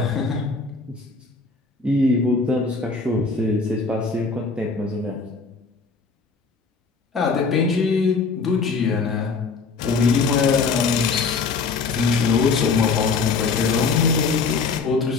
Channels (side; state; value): right; quieter; 4.6 dB